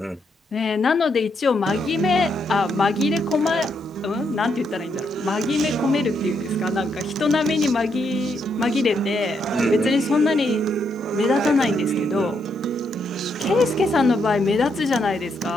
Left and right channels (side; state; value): both; normal; correlation 0.77